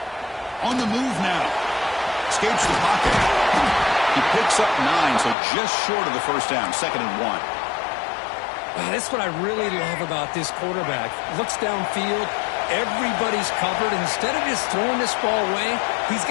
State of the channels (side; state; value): right; drops out; at 5.4 s